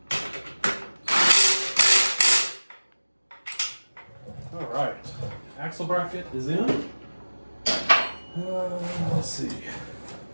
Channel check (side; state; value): both; inverted; correlation -1.00